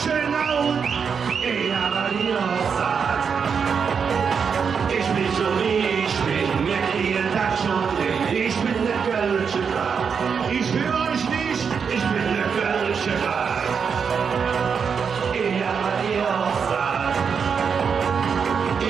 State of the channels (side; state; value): left; quieter; 6.3 dB